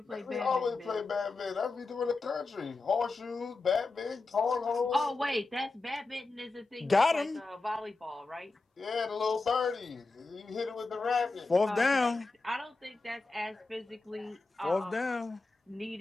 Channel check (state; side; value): quieter; right; 3.6 dB